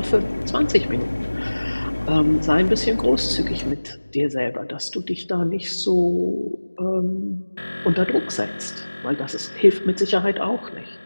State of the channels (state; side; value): inverted; both; correlation -1.00